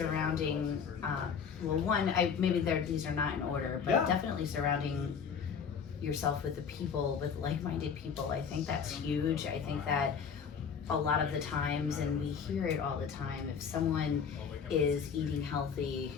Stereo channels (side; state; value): right; quieter; 6.7 dB